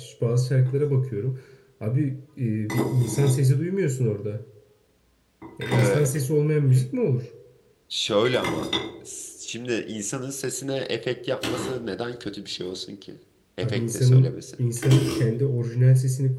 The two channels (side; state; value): both; identical; correlation 1.00